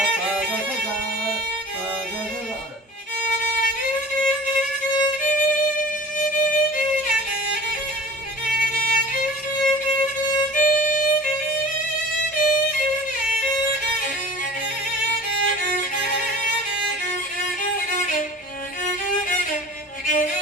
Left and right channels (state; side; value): normal; both; correlation 0.40